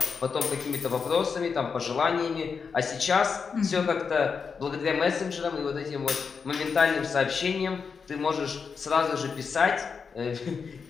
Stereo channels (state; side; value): quieter; right; 5.7 dB